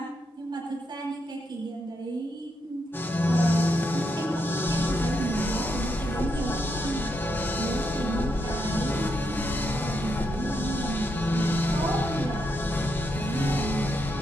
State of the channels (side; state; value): both; normal; correlation 0.81